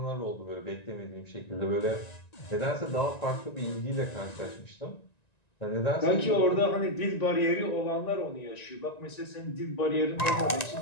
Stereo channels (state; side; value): late; right; 1.9 ms